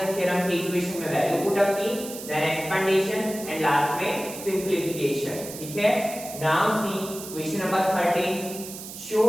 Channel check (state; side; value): noise; right; hiss, 11 dB below the sound